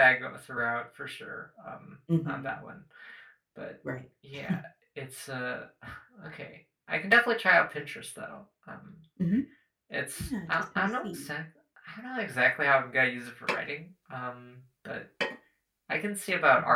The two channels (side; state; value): both; identical; correlation 1.00